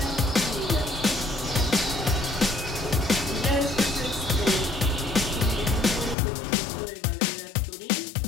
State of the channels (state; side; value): drops out; right; at 6.2 s